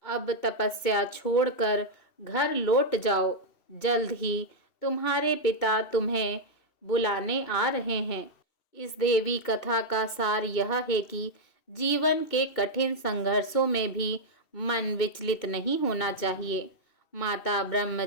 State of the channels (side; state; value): right; late; 2.7 ms